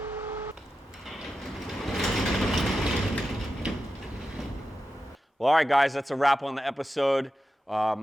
Well, all right, guys, that's a wrap on the episode.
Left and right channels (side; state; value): both; normal; correlation 0.91